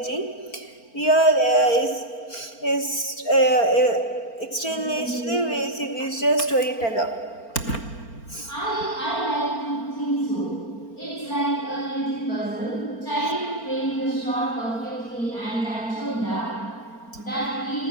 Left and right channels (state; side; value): late; right; 4.4 ms